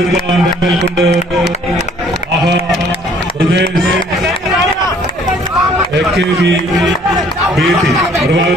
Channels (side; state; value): both; normal; correlation 0.58